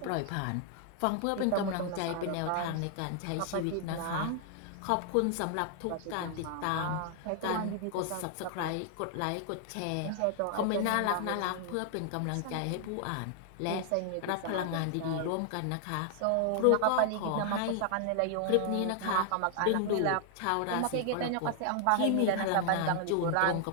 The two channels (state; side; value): different; both; correlation 0.00